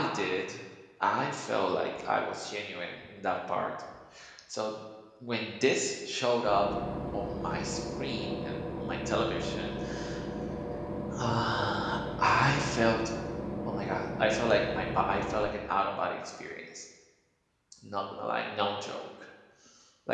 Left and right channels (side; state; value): both; identical; correlation 1.00